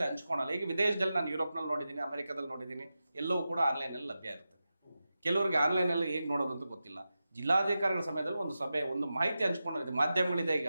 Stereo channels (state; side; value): inverted; both; correlation -0.92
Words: ಹಂಚ್ಕೊಳಲ್ಲ. ಈಗ ವಿದೇಶದಲ್ಲಿ ನಾನು ಯುರೋಪ್ನಲ್ಲಿ ನೋಡಿದ್ದೀನಿ, ಅಮೆರಿಕದಲ್ಲಿ ನೋಡಿದ್ದೀನಿ, ಎಲ್ಲವೂ ಕೂಡ ಆನ್ಲೈನಲ್ಲಿ ಲಭ್ಯ ಇರುತ್ತೆ. ಕೆಲವರಿಗೆ ಆನ್ಲೈನಲ್ಲಿ ಹೇಗೆ ನೋಡೋದಂತ ಗೊತ್ತಿಲ್ಲ. ಜಿಲ್ಲಾಧಿಕಾರಿಗಳ ಸಮಯದಲ್ಲಿ ಒಂದು ಸಭೆ, ಒಂದು ಮಾಹಿತಿ ಹಂಚ್ಕೊಂಡಿದೆ, ಮಾಧ್ಯಮಗಳಿದೆ. ಈಗ